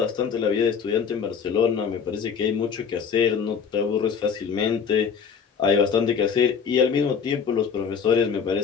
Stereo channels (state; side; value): quieter; right; 6.6 dB